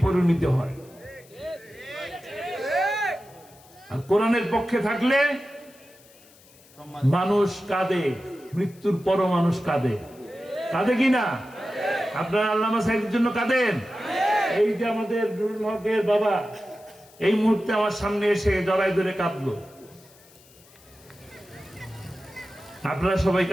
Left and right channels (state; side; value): noise; left; hiss, 26 dB below the sound